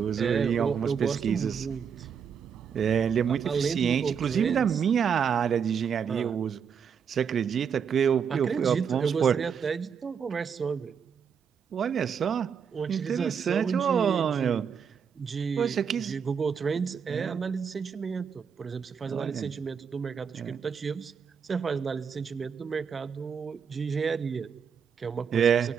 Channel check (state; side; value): quieter; left; 7.0 dB